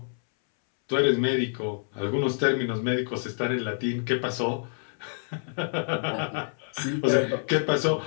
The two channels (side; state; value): right; silent; 60 dB below the other